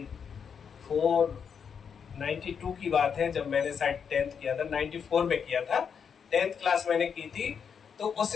92 की बात है, जब मैंने शायद 10th किया था, 94 में किया था, 10th क्लास मैंने की थी। तो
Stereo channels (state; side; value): quieter; right; 6.9 dB